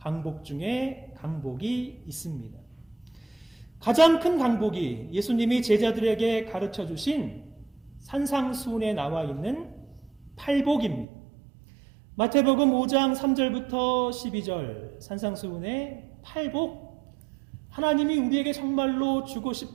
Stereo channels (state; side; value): drops out; left; at 11.1 s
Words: 중에 강복이 있습니다. 가장 큰 강복이 예수님이 제자들에게 가르쳐 주신 산상수훈에 나와 있는 팔복입니다. 마태복음 5장 3절부터 12절 산상수훈의 팔복, 하나님이 우리에게 정말로 주고